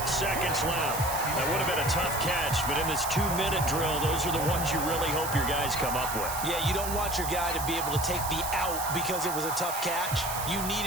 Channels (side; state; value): right; noise; hiss, 6 dB below the sound